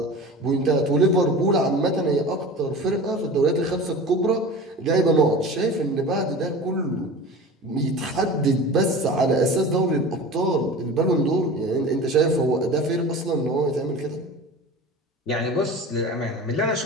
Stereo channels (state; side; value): normal; both; correlation 0.35